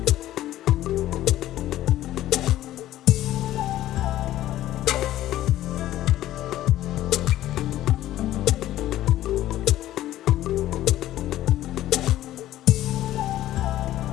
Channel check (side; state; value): right; quieter; 14.0 dB